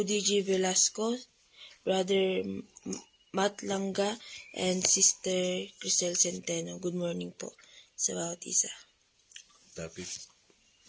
Velasco, Brother Matt Langga, and Sister Crisel Centeno. Good morning po sa bawat isa. Topic.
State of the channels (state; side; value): identical; both; correlation 1.00